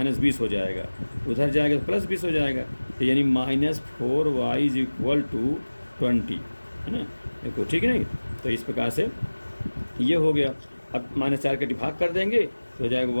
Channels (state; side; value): inverted; both; correlation -1.00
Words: हो जाएगा, उधर जाएगा तो +20 हो जाएगा, तो यानी -4y = 20, है ना। देखो ठीक है नहीं, तो इस प्रकार से ये हो गया। अब -4 का डिवाइड कर देंगे तो हो जाएगा